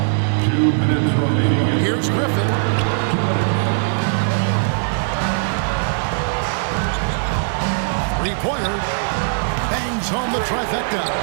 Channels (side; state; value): left; silent; digital silence